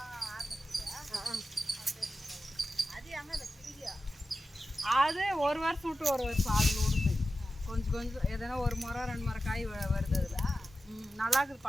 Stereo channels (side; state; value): both; normal; correlation 0.92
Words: அது ஒரு வருஷம் விட்டு ஒரு வருஷம் அதில் விடுது. கொஞ்சம் கொஞ்சம் எதனா ஒரு முறை 2 முறை காய் வருது அதில். நல்லா இருக்குது